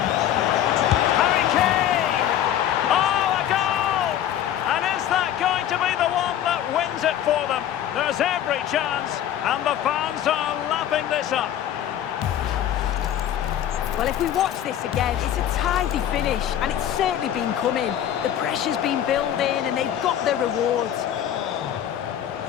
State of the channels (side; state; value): right; quieter; 10.8 dB